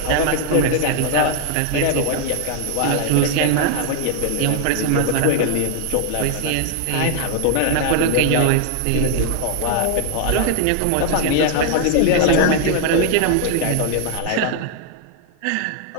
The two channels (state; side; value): different; both; correlation 0.00